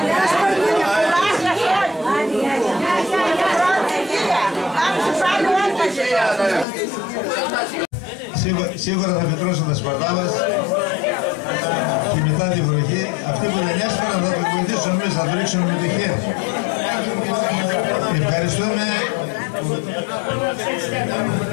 Σίγουρα θα φυτρώσουν τα σπαρτά μας και μετά τη βροχή. Αυτοί που δεν έσπαραν θα το βοηθήσουν εμείς, θα το ρίξουν με το χέρι.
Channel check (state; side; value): drops out; right; at 6.7 s